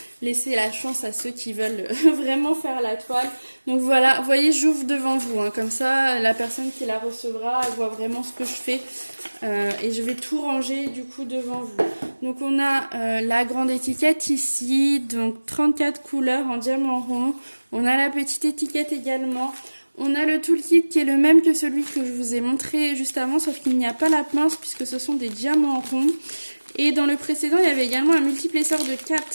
Laissez la chance à ceux qui veulent vraiment faire la toile. Donc voilà, vous voyez, j'ouvre devant vous, hein. Comme ça, la personne qui la recevra, elle voit vraiment ce que je fais. Et je vais tout ranger du coup devant vous. Donc on a la grande étiquette ici, donc 34 couleurs en diamant rond. On a la petite étiquette également. On a le toolkit qui est le même que celui que je vous ai montré juste avant, sauf qu'il n'y a pas la pince puisque ce sont des diamants ronds. Et dans le précédent, il y avait également un multiplesseur de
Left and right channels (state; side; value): inverted; both; correlation -1.00